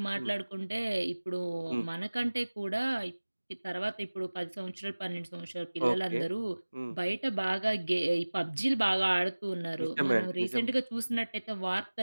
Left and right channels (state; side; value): inverted; both; correlation -1.00